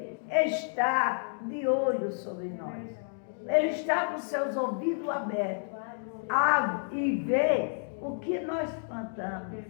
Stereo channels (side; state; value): right; silent; digital silence